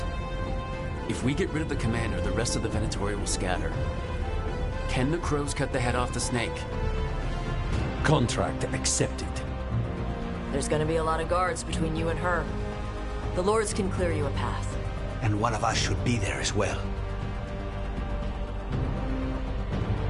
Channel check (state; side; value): identical; both; correlation 1.00